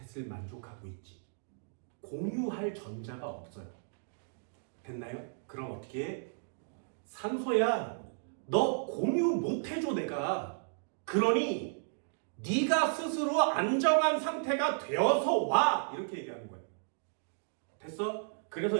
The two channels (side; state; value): left; silent; digital silence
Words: 만족하고 있지. 공유할 전자가 없어요. 됐나요? 그럼 어떻게 해? 산소야, 너 공유 못 해줘 내가. 그러니 네가 스스로 안정한 상태가 되어서 와. 이렇게 얘기하는 거예요. 됐어? 그래서